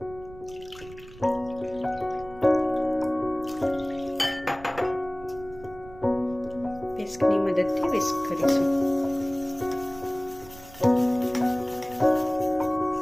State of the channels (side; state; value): right; noise; rumble, 19 dB below the sound